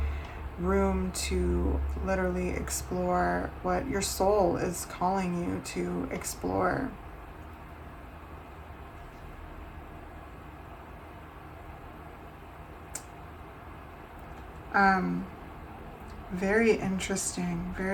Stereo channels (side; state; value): both; identical; correlation 1.00